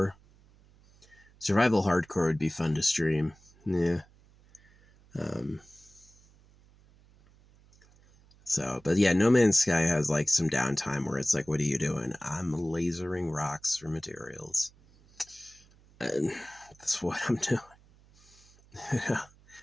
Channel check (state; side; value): noise; right; hum, 28 dB below the sound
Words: Survival hardcore would be fun to stream. Yeah. Um, so, but yeah, No Man's Sky has like some downtime where it's like, what are you doing? I'm lasering rocks for materials. And that's what I'm doing.